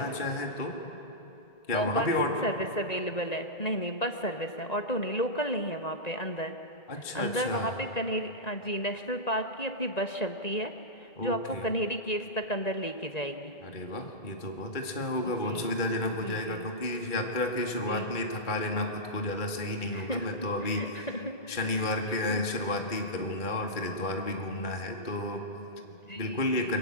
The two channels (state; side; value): late; right; 2.3 ms